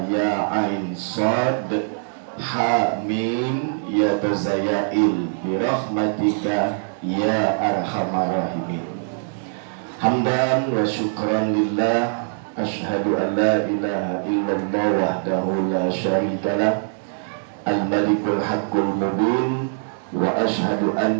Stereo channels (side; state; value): left; silent; 64 dB below the other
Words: ya ain sad ha mim ya tazayail bi rahmatika ya arhamar rahimin. Hamdan wa syukran lillah, asyhadu an la ilaha illallah wahdahu la syarikalah, al-malikul haqqul mubin, wa asyhadu